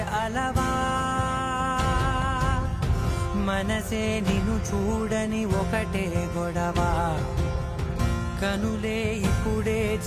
అలవా, మనసే నిన్ను చూడని ఒకటే గొడవ, కనులే ఇప్పుడే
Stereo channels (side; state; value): both; identical; correlation 1.00